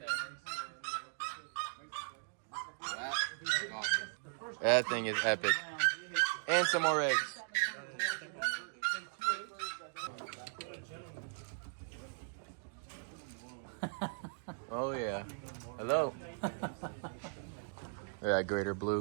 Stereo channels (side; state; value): left; silent; digital silence